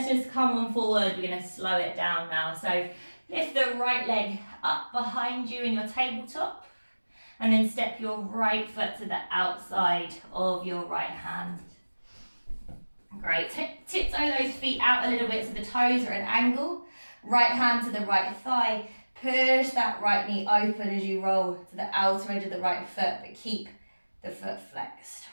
just come on forward. We're going to slow it down now. So lift the right leg up behind you in your tabletop. And then step your right foot to the outside of your right hand. Great. Tiptoe those feet out a little bit so the toes are at an angle. Right hand to the right thigh. Push that right knee open as you roll to the outer edge of the right foot, but keep the foot flexed.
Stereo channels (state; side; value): inverted; both; correlation -1.00